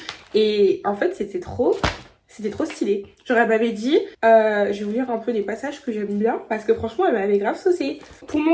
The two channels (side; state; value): both; identical; correlation 1.00